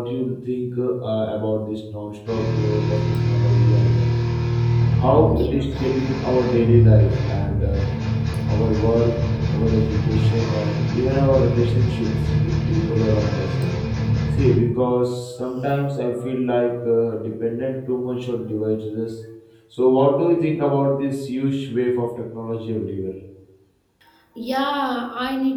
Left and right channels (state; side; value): identical; both; correlation 1.00